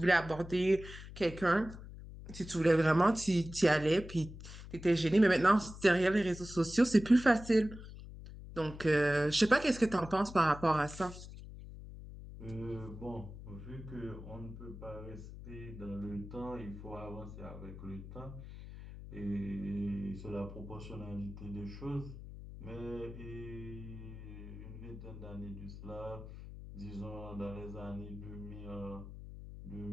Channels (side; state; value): left; noise; hum, 13 dB below the sound